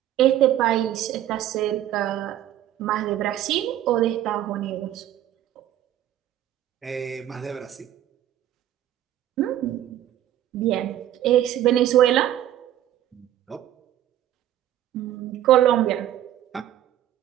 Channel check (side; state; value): left; quieter; 12.2 dB